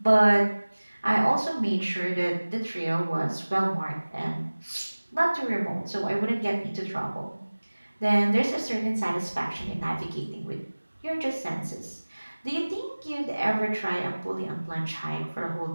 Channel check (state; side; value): inverted; both; correlation -1.00